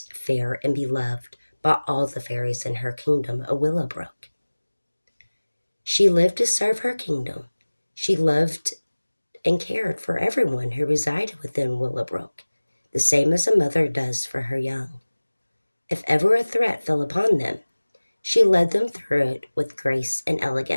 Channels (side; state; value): both; inverted; correlation -1.00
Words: fair, and beloved by all the fairies in her kingdom of Willowbrook. She lived to serve her kingdom. She loved and cared for everyone who resided within Willowbrook, the same as a mother does for her young. If ever a threat fell upon them, she led them through it with grace and